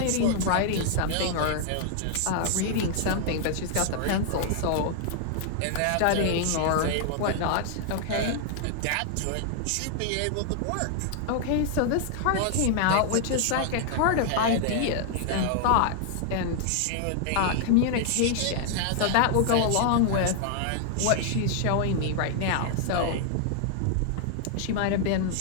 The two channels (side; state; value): both; different; correlation 0.00